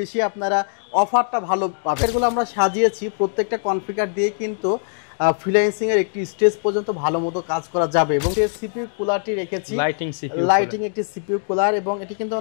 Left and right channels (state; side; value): silent; right; digital silence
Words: আপনারা অফারটা ভালো পাবেন। এগুলো আমরা সাজিয়েছি প্রত্যেকটা কনফিগার দিয়ে কিন্তু ফ্রিল্যান্সিং এর একটি স্টেজ পর্যন্ত ভালো মতো কাজ করা যাবে এবং যে সিপিইউ কুলারটি রেখেছি লাইটিং একটি সিপিইউ কুলার এবং এটি কিন্তু